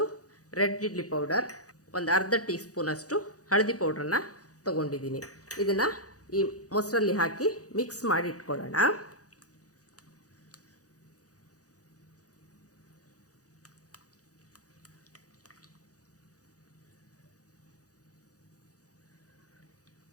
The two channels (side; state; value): right; late; 0.67 ms